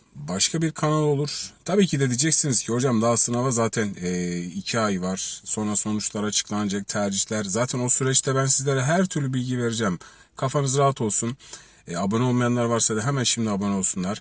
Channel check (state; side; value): identical; both; correlation 1.00